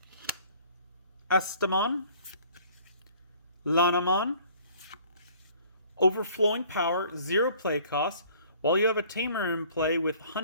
Estamon, Lanamon, Overflowing Power, 0 play cost. While you have a Tamer in play with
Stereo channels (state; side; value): inverted; both; correlation -0.54